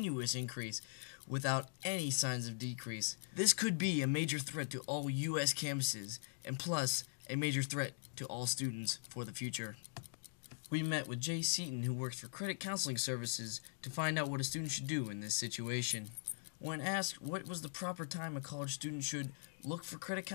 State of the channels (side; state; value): right; silent; digital silence